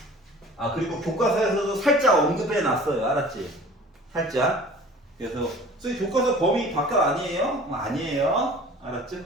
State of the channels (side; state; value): both; normal; correlation 0.45